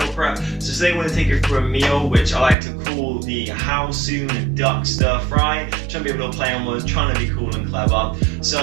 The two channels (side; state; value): left; drops out; at 2.6 s